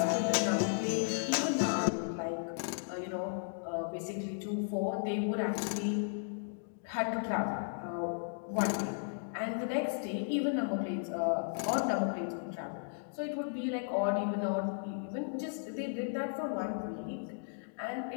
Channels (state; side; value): silent; right; digital silence